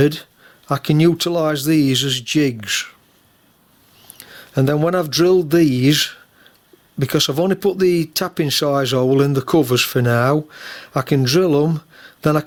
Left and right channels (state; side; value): identical; both; correlation 1.00